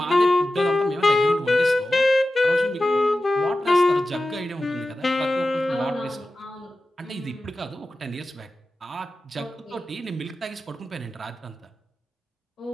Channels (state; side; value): normal; both; correlation 0.94